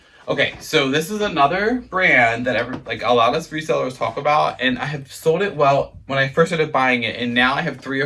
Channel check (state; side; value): identical; both; correlation 1.00